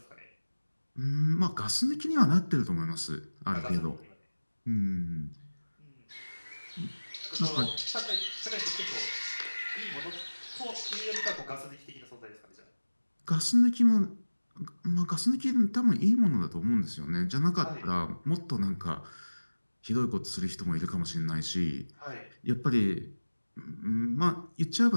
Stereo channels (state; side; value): inverted; both; correlation -1.00